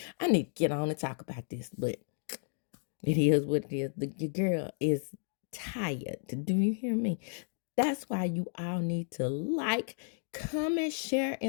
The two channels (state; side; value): silent; right; digital silence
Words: I need to get on and talk about this. But it is what it is. Your girl is tired. Do you hear me? That's why you all need to like, comment, share,